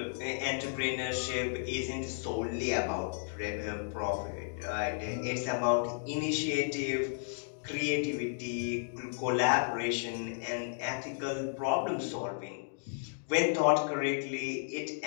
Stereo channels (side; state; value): right; silent; digital silence